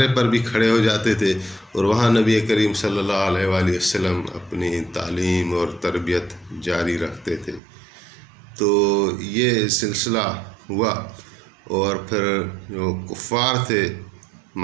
پر بھی کھڑے ہو جاتے تھے، اور وہاں نبی کریم صلی اللہ علیہ وآلہ وسلم اپنی تعلیم اور تربیت جاری رکھتے تھے۔ تو یہ سلسلہ ہوا، اور پھر جو کفار تھے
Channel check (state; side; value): drops out; left; at 7.6 s